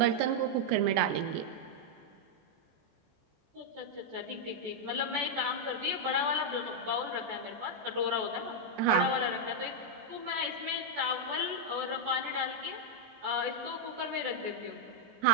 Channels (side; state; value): left; late; 14 ms